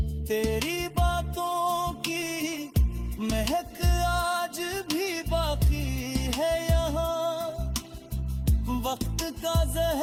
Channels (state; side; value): identical; both; correlation 1.00